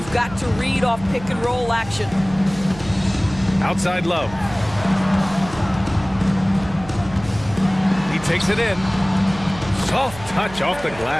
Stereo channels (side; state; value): right; noise; hum, 16 dB below the sound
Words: got to read off pick-and-roll action. Outside Love. He takes it in. Soft touch off the